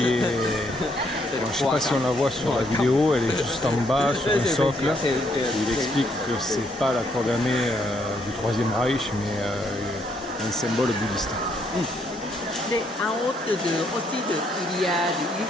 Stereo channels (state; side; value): normal; both; correlation 0.72